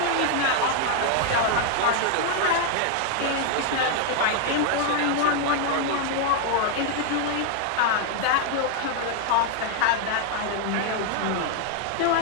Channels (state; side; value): different; both; correlation 0.00